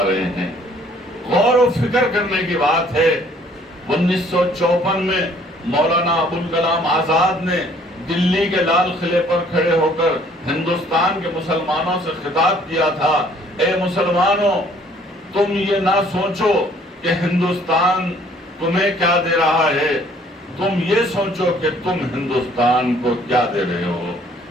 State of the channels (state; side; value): normal; both; correlation 0.59